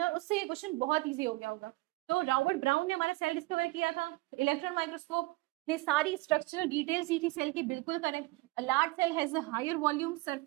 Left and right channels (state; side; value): quieter; left; 21.8 dB